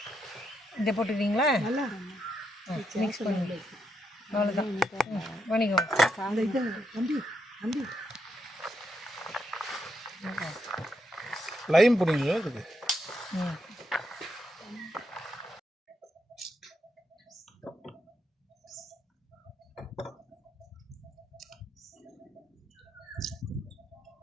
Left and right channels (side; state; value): both; normal; correlation 0.80